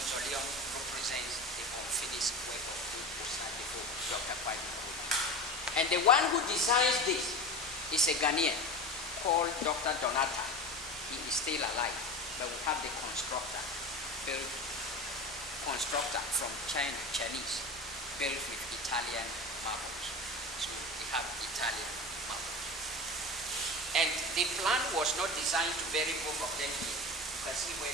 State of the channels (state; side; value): normal; both; correlation 0.29